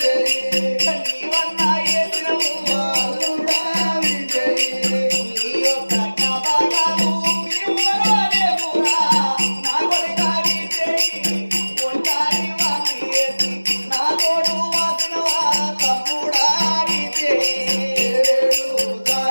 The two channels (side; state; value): both; inverted; correlation -1.00